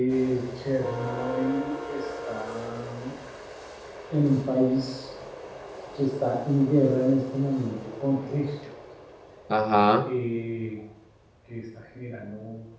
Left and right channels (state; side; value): identical; both; correlation 1.00